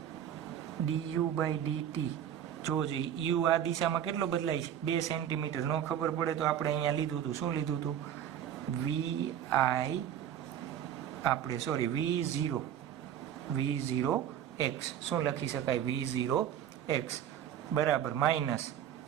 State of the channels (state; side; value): quieter; left; 10.0 dB